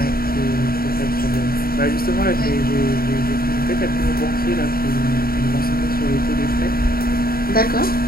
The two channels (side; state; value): right; late; 0.43 ms